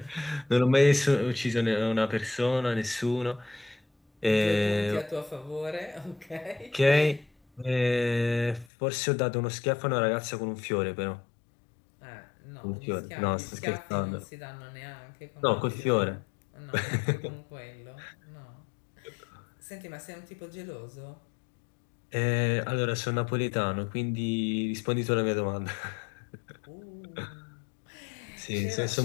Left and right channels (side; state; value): right; drops out; at 8.7 s